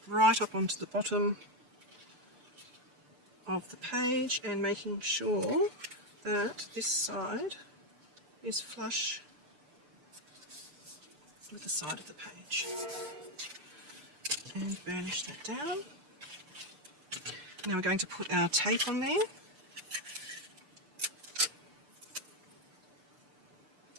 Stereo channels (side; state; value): left; late; 6.8 ms